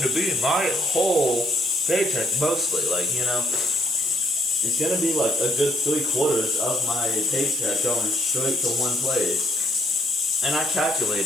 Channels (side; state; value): both; normal; correlation 0.69